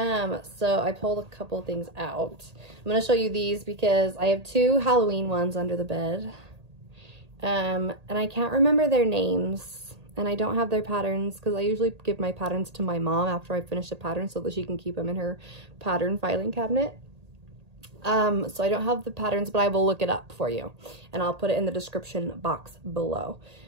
I pulled a couple things out. I'm going to show you these because I have 2 Halloween ones under the bed. And I can't remember their names and I don't have their patterns because I usually give my patterns to my mom after I finish a pattern so that she can keep them in her pattern filing cabinet. So I don't have the patterns, but I will look it up for you and I'll put it in the description box below.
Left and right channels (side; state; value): left; late; 1.8 ms